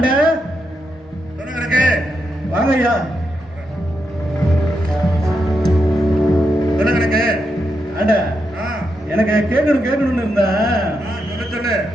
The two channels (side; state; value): both; normal; correlation 0.84